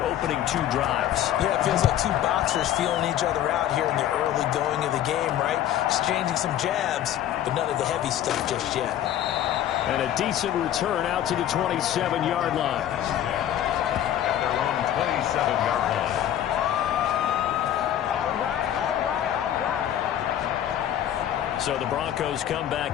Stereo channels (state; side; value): quieter; right; 11.3 dB